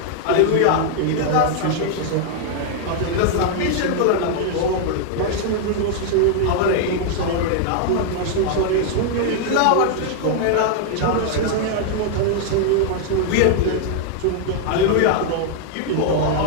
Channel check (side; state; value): both; different; correlation 0.00